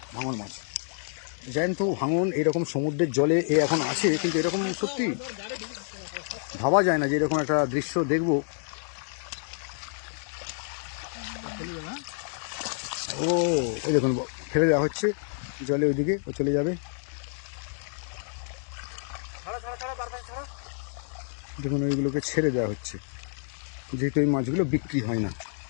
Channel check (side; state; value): right; silent; digital silence